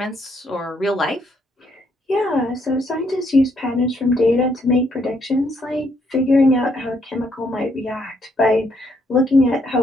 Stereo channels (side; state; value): both; normal; correlation 0.72